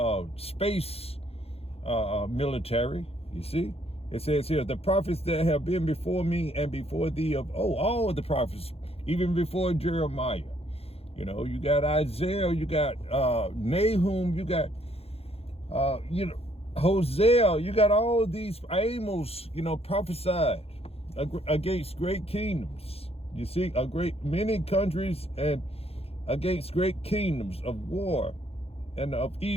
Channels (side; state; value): right; late; 0.29 ms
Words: space military, you see. It says here, the prophets that have been before me and before thee of, all of the prophets, even before Jeremiah, you got Isaiah, you got Nahum, you got, Hosea, you got all these Amos, prophesied against great kingdoms. You see, many countries and against great kingdoms of war and of